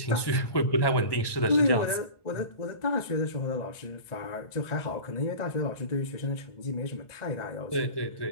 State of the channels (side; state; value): right; late; 1.1 ms